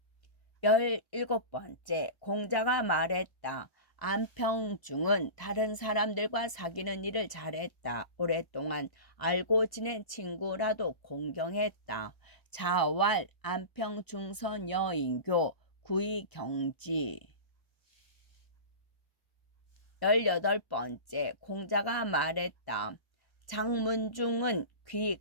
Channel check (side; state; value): right; late; 1.0 ms